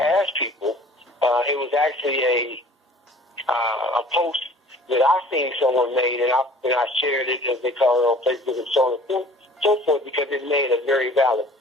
asked people. It was actually a post that I seen someone made, and I shared it, as they call it, on Facebook and so on and so forth, because it made a very valid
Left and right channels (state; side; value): normal; both; correlation 0.49